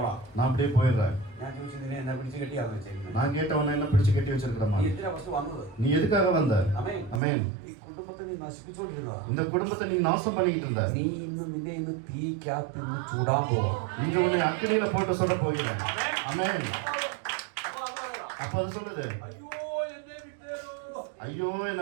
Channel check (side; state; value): left; drops out; at 7.2 s